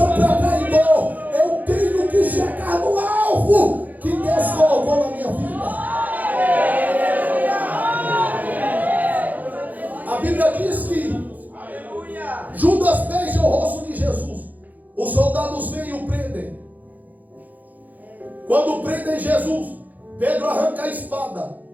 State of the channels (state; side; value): late; left; 0.081 ms